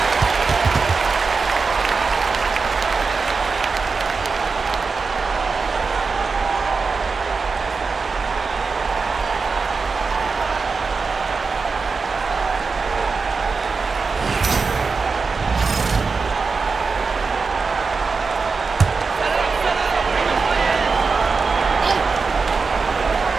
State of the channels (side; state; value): left; quieter; 4.6 dB